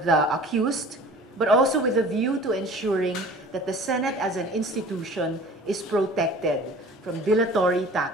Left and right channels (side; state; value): both; normal; correlation 0.45